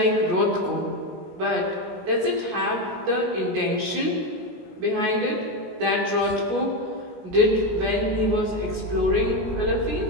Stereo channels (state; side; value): late; left; 16 ms